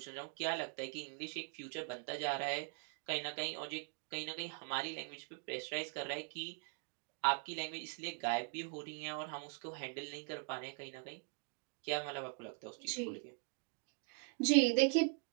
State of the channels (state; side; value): quieter; left; 39.8 dB